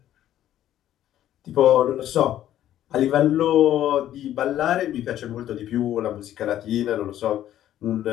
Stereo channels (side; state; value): right; quieter; 12.1 dB